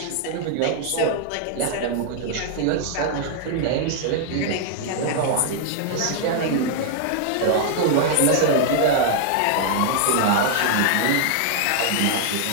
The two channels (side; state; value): both; different; correlation 0.00